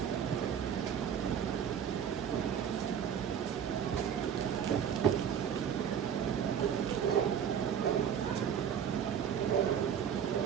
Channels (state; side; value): quieter; left; 8.3 dB